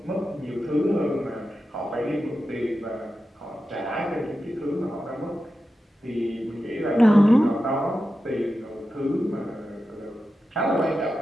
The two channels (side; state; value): both; normal; correlation 0.91